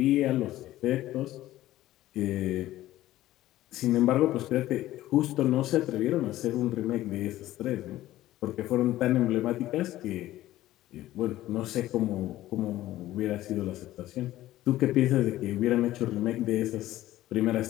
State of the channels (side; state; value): right; quieter; 15.1 dB